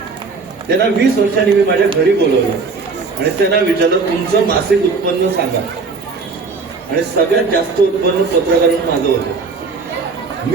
त्यांना 20 वर्षांनी मी माझ्या घरी बोलवलं आणि त्यांना विचारलं तुमचं मासिक उत्पन्न सांगा. आणि सगळ्यात जास्त उत्पन्न पत्रकार म्हणून माझं होतं.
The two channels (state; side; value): quieter; left; 4.4 dB